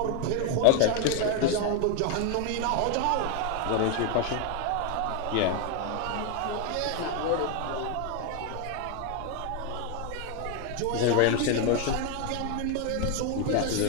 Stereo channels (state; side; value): different; both; correlation 0.01